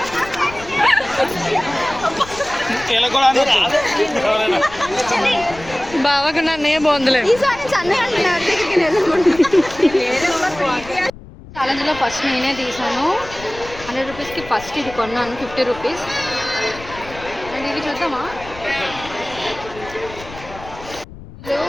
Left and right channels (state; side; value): noise; left; rumble, 17 dB below the sound